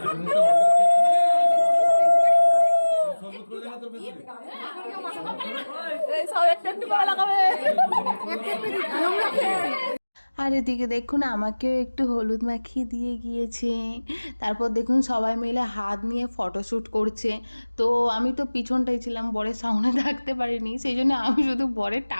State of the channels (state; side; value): inverted; both; correlation -1.00